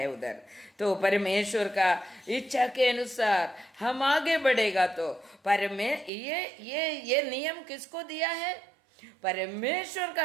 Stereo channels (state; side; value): drops out; left; at 6.1 s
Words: उधर। तो परमेश्वर का इच्छा के अनुसार हम आगे बढ़ेगा तो ये नियम किसको दिया है? परमेश्वर